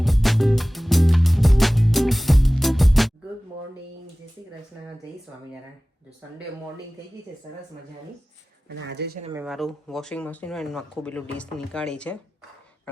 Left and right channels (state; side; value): normal; both; correlation 0.97